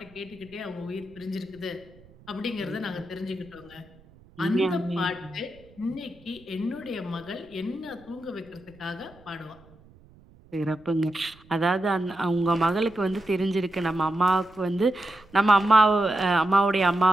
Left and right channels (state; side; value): noise; right; rumble, 26 dB below the sound